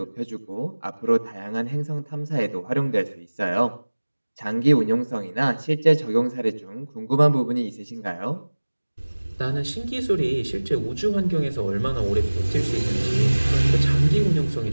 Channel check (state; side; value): inverted; both; correlation -1.00